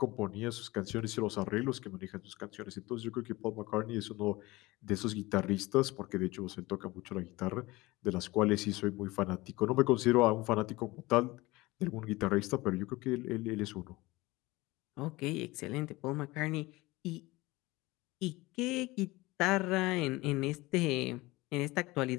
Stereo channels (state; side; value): quieter; right; 20.9 dB